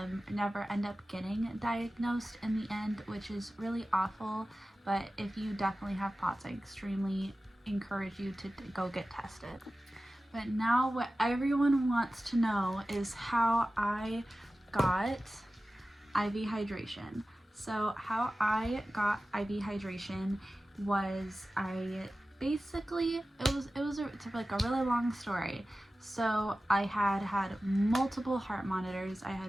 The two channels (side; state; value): both; normal; correlation 0.95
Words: never end up getting diagnosed in the end, which is really awful. But if you definitely have POTS, I extremely encourage you to go get tested. But now what everyone wants to know is how I got IV hydration. So how I got IV hydration was it's like a really long story. So I had multiple heart monitors, I